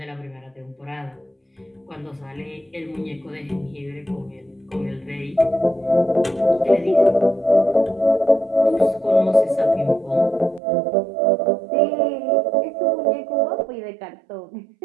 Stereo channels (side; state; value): left; drops out; at 10.6 s